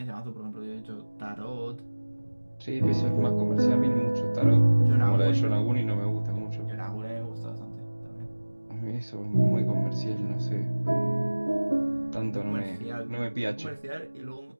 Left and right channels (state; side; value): inverted; both; correlation -1.00